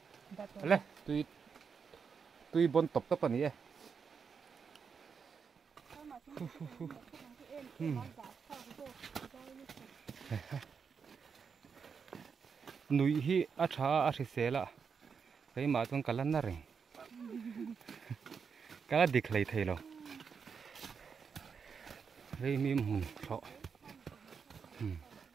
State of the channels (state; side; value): quieter; left; 6.1 dB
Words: lên túi bon top các bạn nhỉ núi hi acha sela cái mà tuần cả lần này cái là địch lấy thấy rồi cái mìm hùn sọ